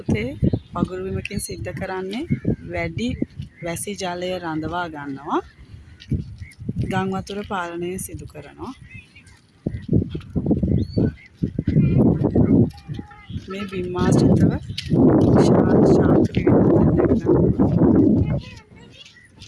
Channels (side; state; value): both; identical; correlation 1.00